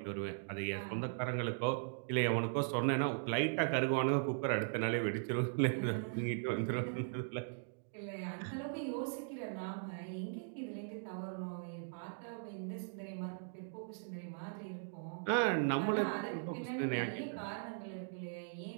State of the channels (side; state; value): left; silent; digital silence